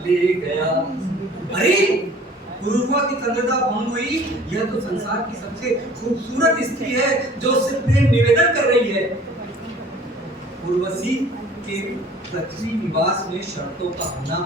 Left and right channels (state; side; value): normal; both; correlation 0.50